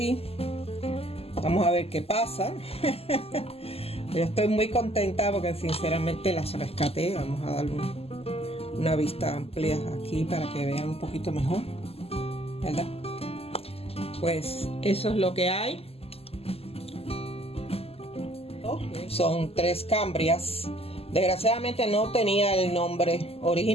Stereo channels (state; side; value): late; right; 0.29 ms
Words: Vamos a ver qué pasa. Yo estoy muy contenta porque sinceramente las rescaté. Vamos a darle una vista amplia aquí para que vean un poquito mejor, ¿verdad? Pues eso es lo que hay. Son 3 cambrias. Desgraciadamente no tenía el nombre